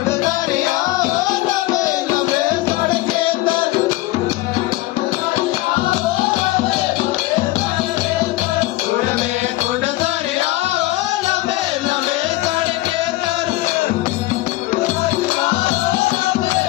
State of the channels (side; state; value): right; quieter; 18.2 dB